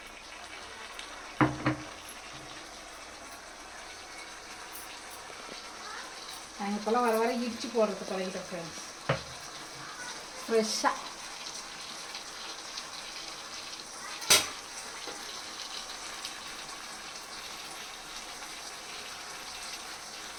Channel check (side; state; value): both; identical; correlation 1.00